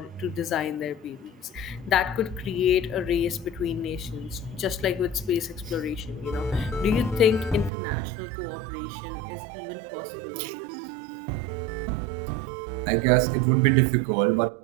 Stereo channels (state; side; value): drops out; left; at 7.7 s